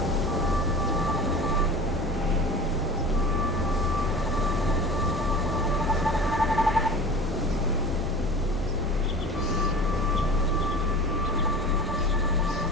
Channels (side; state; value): both; normal; correlation 0.37